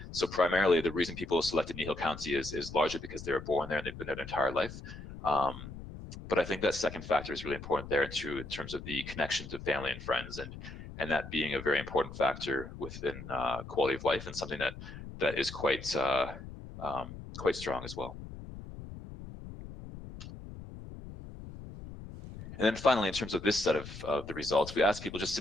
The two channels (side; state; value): left; noise; rumble, 12 dB below the sound